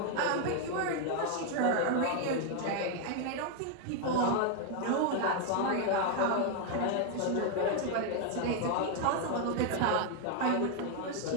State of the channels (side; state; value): both; different; correlation 0.00